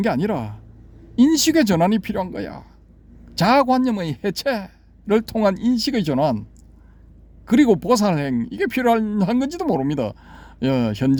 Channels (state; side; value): identical; both; correlation 1.00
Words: 게 아니라 인식의 전환이 필요한 거야. 자아관념의 해체를 통한 인식의 전환, 그리고 보살행, 이게 필요한 건지도 모릅니다.